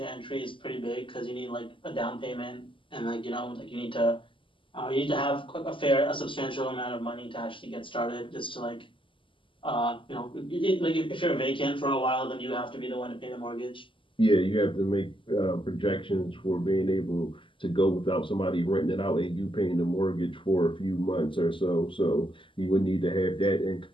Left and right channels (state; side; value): late; right; 0.25 ms